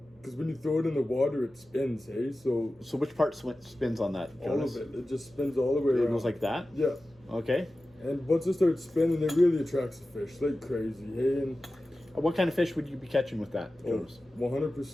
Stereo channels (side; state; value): both; normal; correlation 0.95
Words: because when you throw it in the water, it spins, hey? So which part spins on that, Jonas? All of it. It just spins all the way around. It goes like that? Yeah. Okay. And once it starts spinning, it really attracts the fish like crazy, hey? And What kind of fish would you be catching with that, Jonas?